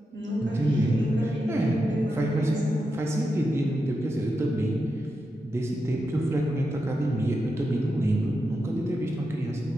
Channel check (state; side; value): normal; both; correlation 0.87